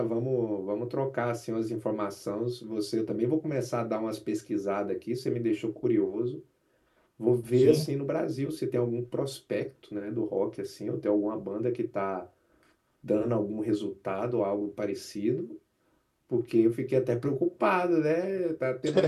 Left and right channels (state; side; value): identical; both; correlation 1.00